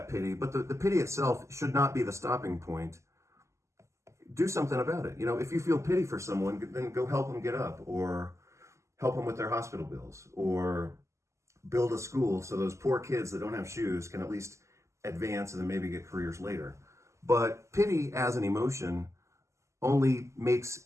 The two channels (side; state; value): left; late; 0.14 ms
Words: pity, but the pity itself should not be the stopping point. Do something about it. If you feel pity for someone, then go help them get up, or help them with their hospital bills, or build a school so those poor kids that don't have shoes can at least advance and then maybe get careers later. But pity as an emotion only